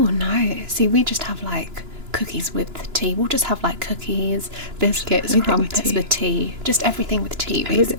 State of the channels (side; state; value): left; late; 2.9 ms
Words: no. See, we just have like cookies with tea. We'll just have like cookies, biscuits, Everything with crumpets tea. with tea. Just everything with tea,